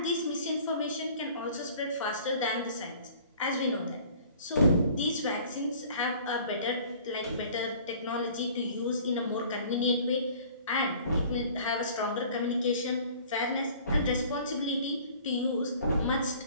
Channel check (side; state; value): both; inverted; correlation -0.50